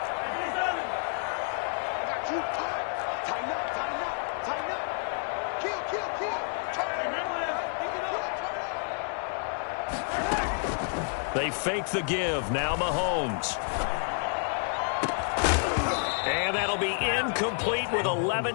They fake the give. Now Mahomes. And that'll be incomplete with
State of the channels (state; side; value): silent; right; 58 dB below the other